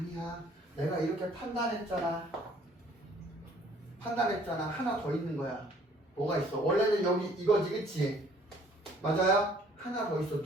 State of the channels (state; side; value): normal; both; correlation 0.58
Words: 내가 이렇게 판단했잖아. 하나 더 있는 거야. 뭐가 있어? 원래는 여기 이거지 그치? 맞아요? 하나 더 있어.